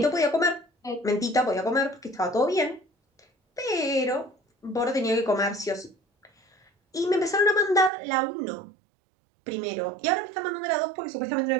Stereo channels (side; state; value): left; drops out; at 7.9 s